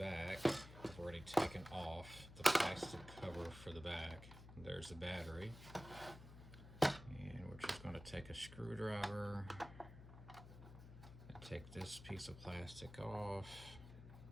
I've already taken off the plastic cover for the back. There's the battery. And we're just going to take a screwdriver and take this piece of plastic off.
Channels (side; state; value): left; noise; hum, 14 dB below the sound